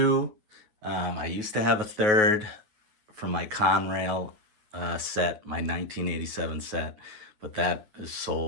I used to have a third from my Conrail set, my 1987 set, but that is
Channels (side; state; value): left; late; 9.4 ms